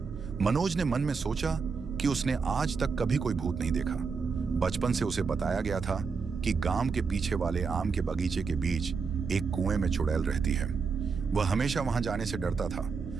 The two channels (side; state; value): left; quieter; 5.2 dB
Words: मनोज ने मन में सोचा कि उसने आज तक कभी कोई भूत नहीं देखा। बचपन से उसे बताया गया था कि गांव के पीछे वाले आम के बगीचे के बीच एक कुएं में चुड़ैल रहती है। वह हमेशा वहां जाने से डरता था।